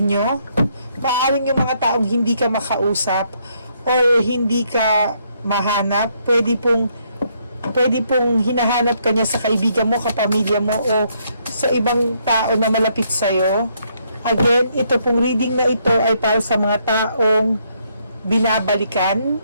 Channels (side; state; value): both; inverted; correlation -0.72